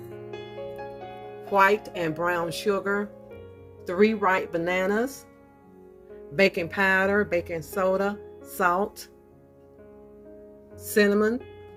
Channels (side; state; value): both; identical; correlation 1.00